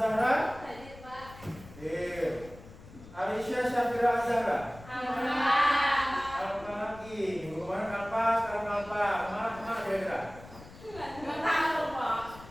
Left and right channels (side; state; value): left; noise; rumble, 18 dB below the sound